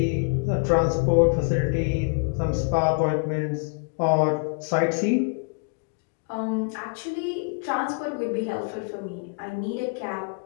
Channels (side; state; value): right; quieter; 37.7 dB